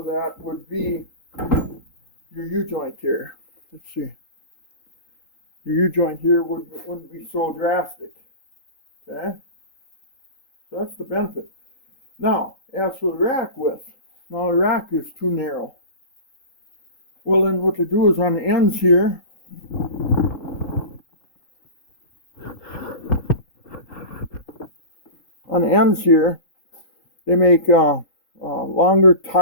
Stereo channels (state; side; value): late; right; 3.8 ms